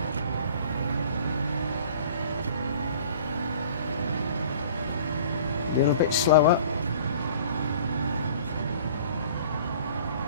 A little bit slower.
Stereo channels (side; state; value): both; inverted; correlation -0.48